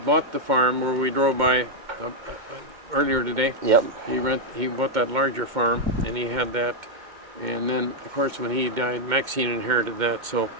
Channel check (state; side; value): late; left; 2.1 ms